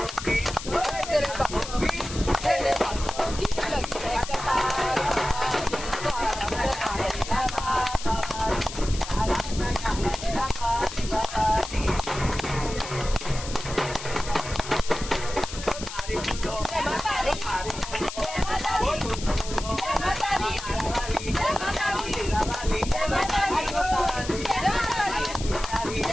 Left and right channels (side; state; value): left; noise; hiss, 10 dB below the sound